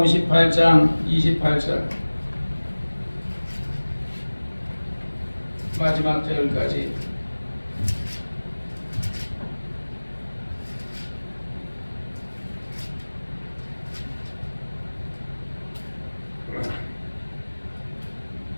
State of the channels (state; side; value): inverted; both; correlation -1.00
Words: 28절 마지막 절까지.